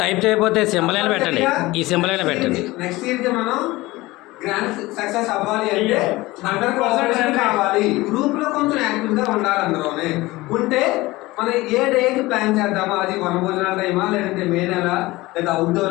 టైప్ చేయకపోతే సింబల్ అయినా పెట్టండి, ఈ సింబల్ అయినా పెట్టండి. నెక్స్ట్ ఇయర్ కి మనం గ్రాండ్ సక్సెస్ అవ్వాలి అంటే 100% కావాలి. గ్రూప్ లో కొంచెం యాక్టివ్ గా ఉండాలి. అందులోనే ఉంటే మనం ఏ డేకి ప్లాన్ చేద్దామా, అది వనభోజనాల టైమా లేదంటే మే నెల లేదా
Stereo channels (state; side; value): quieter; right; 19.9 dB